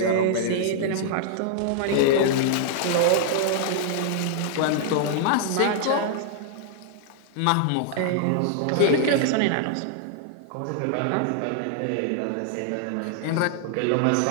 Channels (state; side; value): different; both; correlation -0.01